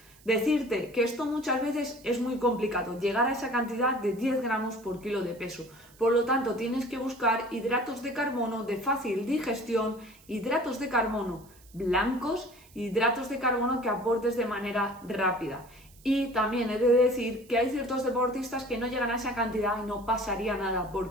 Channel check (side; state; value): right; noise; hiss, 26 dB below the sound